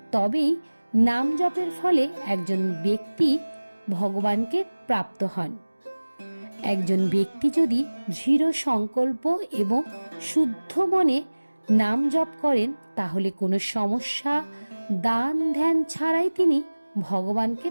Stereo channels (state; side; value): inverted; both; correlation -1.00